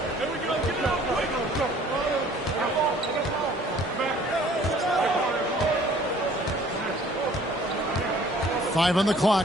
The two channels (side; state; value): both; normal; correlation 0.55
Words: Five on the